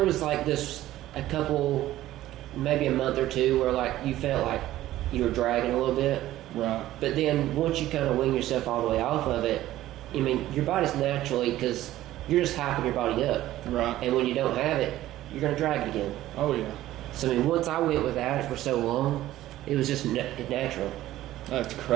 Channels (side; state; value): left; quieter; 14.6 dB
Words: was this a couple, maybe a month or two where you felt like you were dragging a little bit. Right. But then once you kind of wing yourself all the way off of it, your body's naturally, because you're just hyping your body up. Right. And when you don't have it, you're going to drag it again. Oh, yeah. So, once I went without it for so long, it was just natural. That's